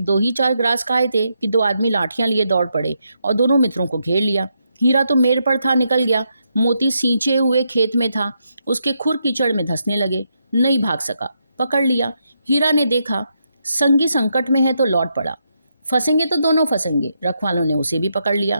ही चार ग्रास खाए थे कि 2 आदमी लाठियां लिए दौड़ पड़े और दोनों मित्रों को घेर लिया। हीरा तो मेर पर था, निकल गया। मोती सींचे हुए खेत में था, उसके खुर कीचड़ में धंसने लगे। नहीं भाग सका, पकड़ लिया। हीरा ने देखा संगी संकट में है तो लौट पड़ा। फंसेंगे तो दोनों फंसेंगे। रखवालों ने उसे भी पकड़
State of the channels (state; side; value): inverted; both; correlation -0.81